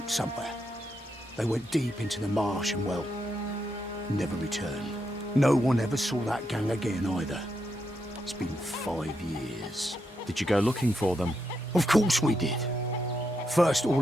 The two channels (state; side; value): normal; both; correlation 0.82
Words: somewhere. They went deep into the marsh and, well, never returned. No one ever saw that gang again either. It's been 5 years. Did you go looking for them? Of course we did. First